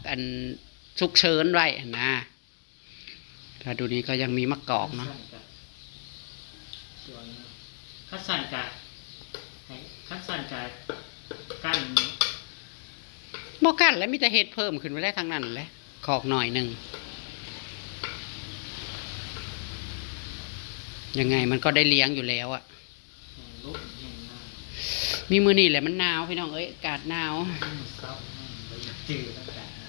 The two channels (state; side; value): silent; right; digital silence